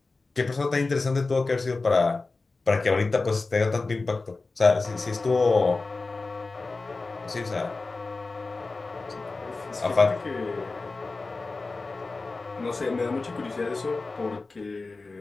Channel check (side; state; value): right; quieter; 3.7 dB